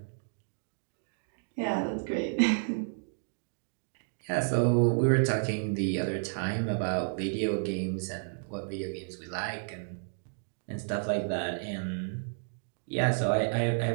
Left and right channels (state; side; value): silent; left; digital silence